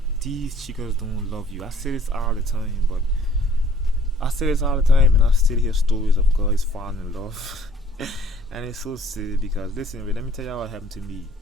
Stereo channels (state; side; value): normal; both; correlation 0.57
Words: these chicas don't love you. I say this all the time, but I say this all the time, and I still hear stories of guys falling in love, and it's so silly because listen, let me tell you what happened to me.